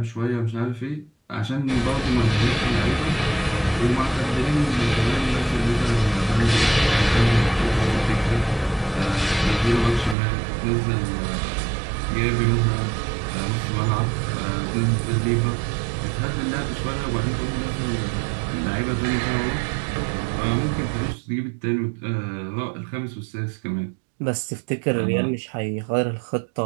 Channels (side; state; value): left; drops out; at 10.2 s